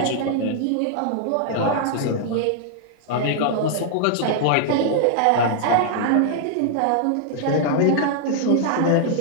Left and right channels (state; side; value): different; both; correlation -0.01